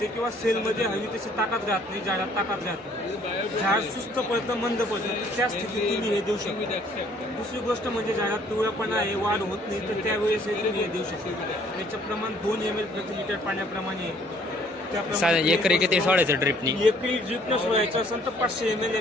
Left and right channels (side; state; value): both; normal; correlation 0.60